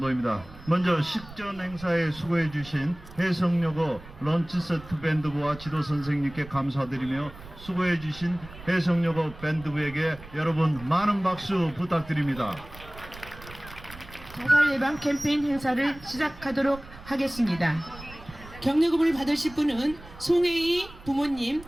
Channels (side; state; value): right; noise; rumble, 17 dB below the sound